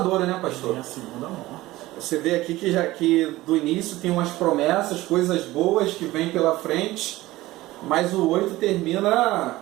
né, pastor? É a segunda morte. Você vê aqui que do início tem umas promessas, coisas boas que vêm pela frente, mas o 8 termina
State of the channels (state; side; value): quieter; left; 17.8 dB